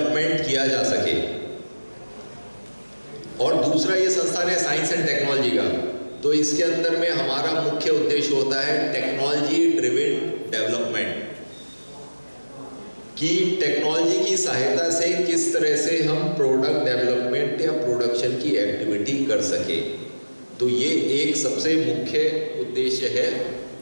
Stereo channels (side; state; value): both; inverted; correlation -1.00